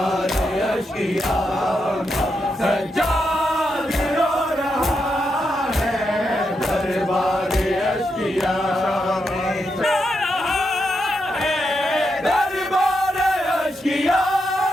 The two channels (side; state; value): both; normal; correlation 0.84